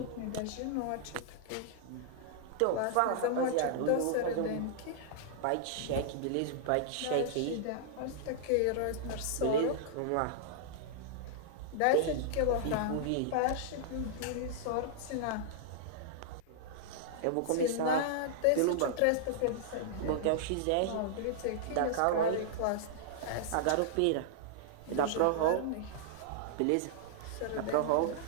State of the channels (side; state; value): both; different; correlation -0.01